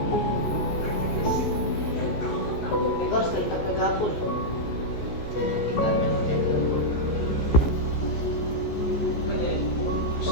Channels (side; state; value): right; late; 15 ms